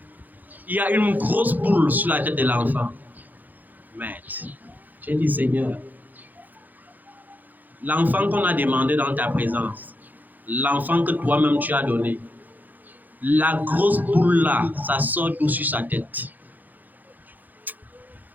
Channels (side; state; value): left; late; 0.084 ms